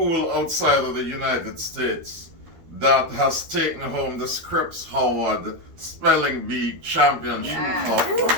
outside of the United States that has taken home the Scripps Howard Spelling Bee Championship Cup.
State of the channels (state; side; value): late; left; 12 ms